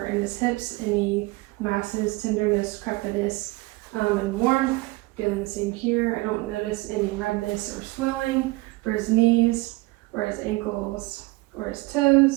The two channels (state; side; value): quieter; left; 22.4 dB